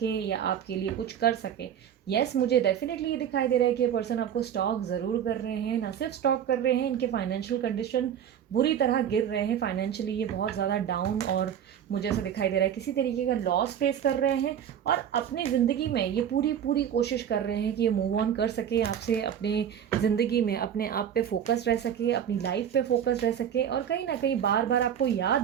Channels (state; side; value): quieter; left; 9.1 dB